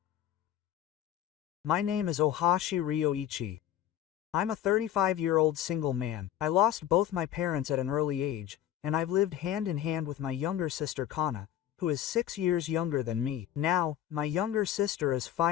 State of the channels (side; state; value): right; quieter; 11.5 dB